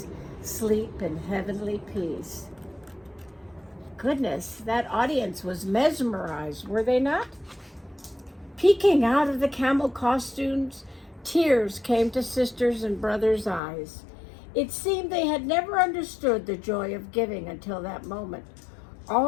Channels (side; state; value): right; drops out; at 13.6 s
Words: sleep in heavenly peace." Goodness, that audience was mesmerized, were they not? Peeking out of the camel costumes, tears came to sisters' and brothers' eyes. It seemed they had never understood the joy of giving until that moment.